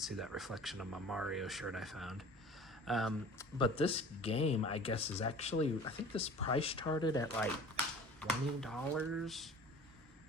that reflection of my Mario shirt I found. But this game, I guess, is actually, I think this price started at like $20.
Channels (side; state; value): both; normal; correlation 0.44